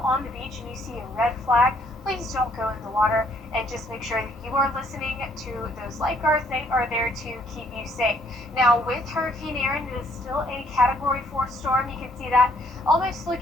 on the beach and you see a red flag, please don't go in the water, and just make sure that you are listening to those lifeguards. They are there to keep you safe. Now with Hurricane Erin, it is still a Category 4 storm. You can see that almost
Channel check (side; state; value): both; normal; correlation 0.66